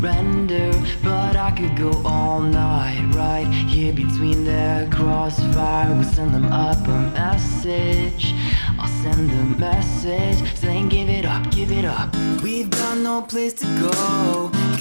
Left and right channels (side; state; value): both; inverted; correlation -1.00